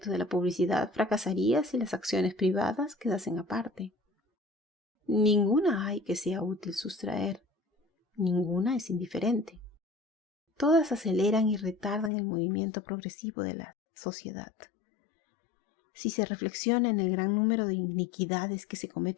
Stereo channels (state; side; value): drops out; right; at 12.1 s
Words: de la publicidad fracasaría si las acciones privadas quedasen aparte. Ninguna hay que sea útil sustraer, ninguna es indiferente. Todas aceleran y retardan el movimiento progresivo de la sociedad. Si se reflexiona en el gran número de iniquidades que se